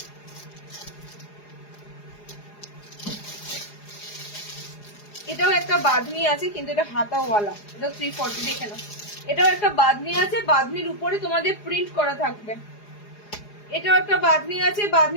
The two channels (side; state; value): right; late; 4.8 ms